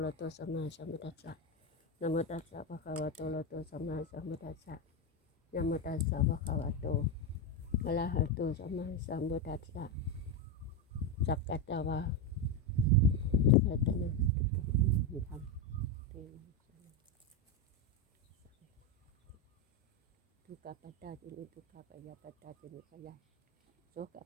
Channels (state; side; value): normal; both; correlation 0.10